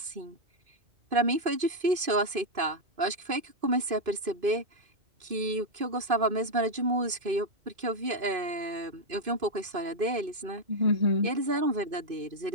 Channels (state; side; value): late; left; 2.5 ms